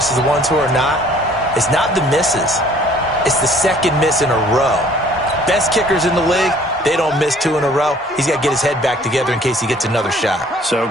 the ones who are not is not the misses. It's the second miss in a row. Best kickers in the league, they don't miss 2 in a row. He's got to get his head back together in case he gets another shot. So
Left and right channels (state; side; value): normal; both; correlation 0.56